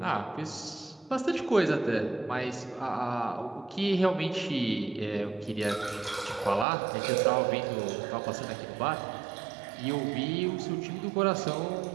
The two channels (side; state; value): left; drops out; at 6.7 s